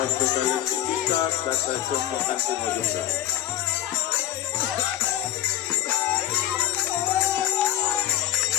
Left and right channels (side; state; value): right; quieter; 12.7 dB